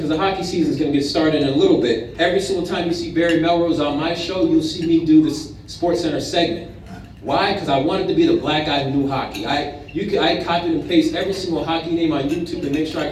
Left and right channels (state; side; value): identical; both; correlation 1.00